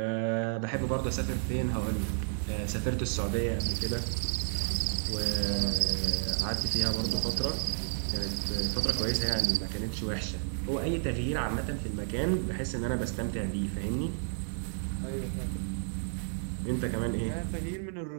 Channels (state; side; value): silent; left; digital silence